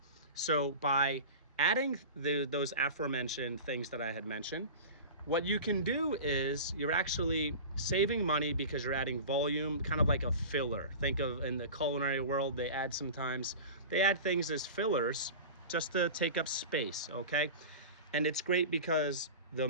So by adding those aforementioned things that I had mentioned, what you can do is you're actually saving money because you're adding volume, kind of like a filler. Think of, in the culinary world, they add things as fillers just to take up space, okay? And it's great because the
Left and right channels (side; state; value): both; inverted; correlation -0.33